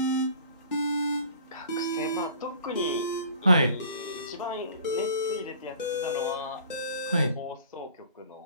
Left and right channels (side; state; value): both; inverted; correlation -0.48